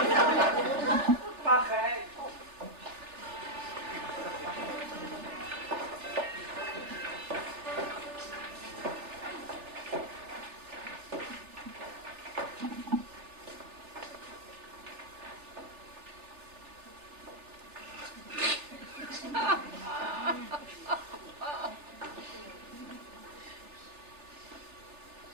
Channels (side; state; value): left; late; 3.4 ms